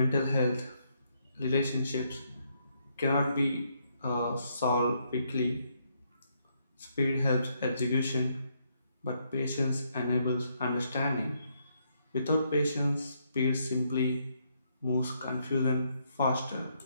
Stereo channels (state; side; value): inverted; both; correlation -0.75